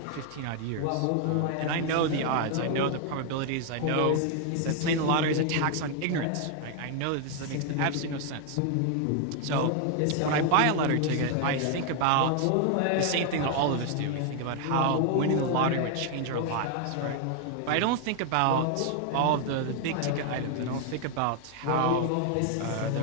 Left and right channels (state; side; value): different; both; correlation 0.00